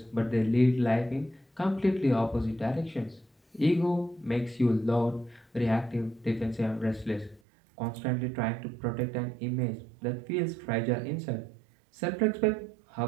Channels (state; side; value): drops out; left; at 7.4 s